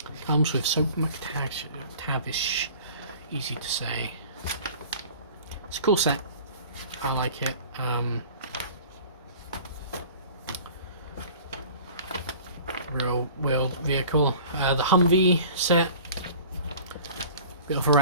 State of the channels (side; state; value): both; inverted; correlation -0.44